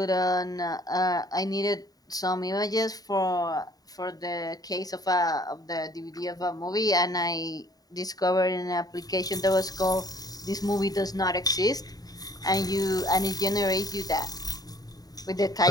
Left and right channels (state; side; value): late; right; 0.18 ms